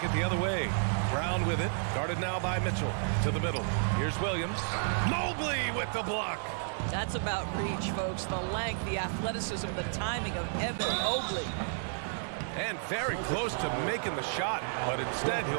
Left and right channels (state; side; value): silent; left; digital silence